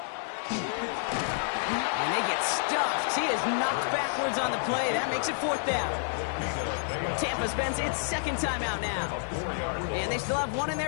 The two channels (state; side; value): silent; right; 58 dB below the other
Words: And they get stuffed. He is knocked backwards on the play. That makes it 4th down. Tampa spends its 2nd timeout now. And they still have 1 in